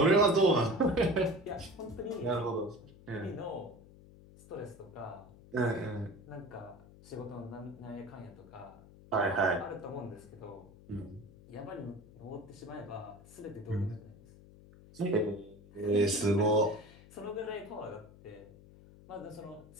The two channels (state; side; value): noise; left; hum, 21 dB below the sound